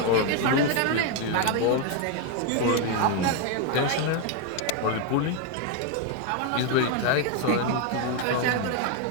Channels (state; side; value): different; both; correlation 0.01